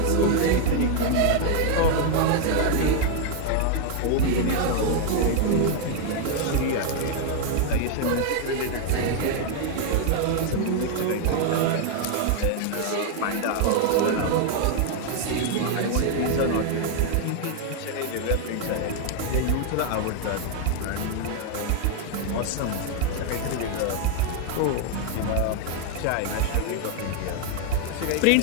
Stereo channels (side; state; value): both; different; correlation 0.00